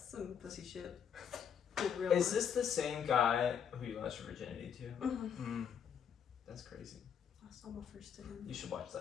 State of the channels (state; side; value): quieter; right; 7.9 dB